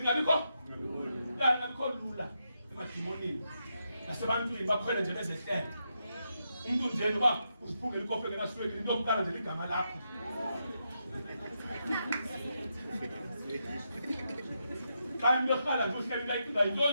lula. Ngabikho lula emadimoni. Nasebantwini bakhwele nje bezehlele. Umuntu nje noba usiphungela ikofe ngenasweki into yokuqala nje igama lakho. Xa imekhala nje uhleli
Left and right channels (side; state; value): both; inverted; correlation -0.84